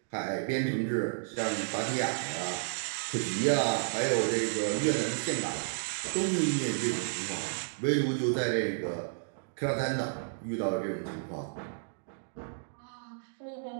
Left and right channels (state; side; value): silent; left; digital silence